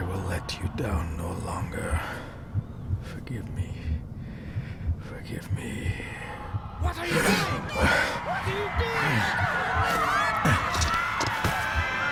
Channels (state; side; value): identical; both; correlation 1.00